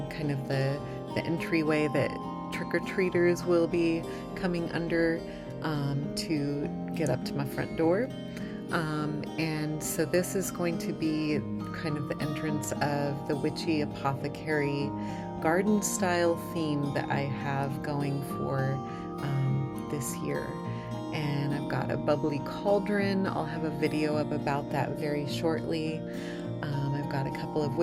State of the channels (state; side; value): identical; both; correlation 1.00